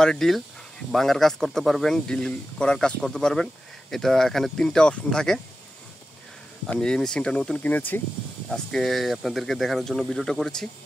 ডিল ভাঙার কাজ করতে পারবেন, ডিল করার কাজ করতে পারবেন। এটা এখানে 3টা অপশন থাকে। আমি এই মেশিনটা নতুন কিনেছি, আজকে আপনাদেরকে দেখানোর জন্য ভিডিওটা করেছি।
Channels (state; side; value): normal; both; correlation 0.92